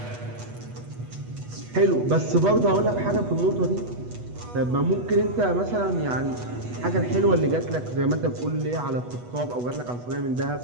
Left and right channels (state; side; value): late; left; 8.2 ms